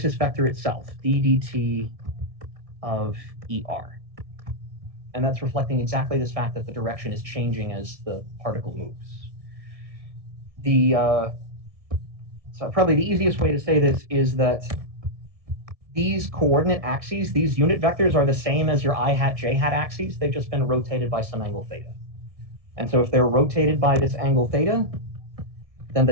vector itself, d dt of er. And that's reflecting exactly this fact that the direction is changing as the particle moves. So probably the easiest way to say this is that these coordinate axes, these unit vectors, are the same as your I hat, j hat axes. They've just been rotated by some angle theta. And so if they're rotated by this angle theta, then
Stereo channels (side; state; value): left; late; 1.6 ms